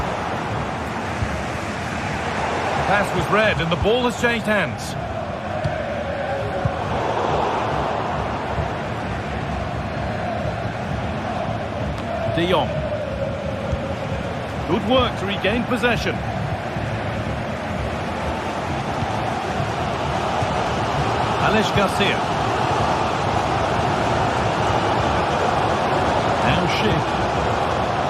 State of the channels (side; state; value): both; identical; correlation 1.00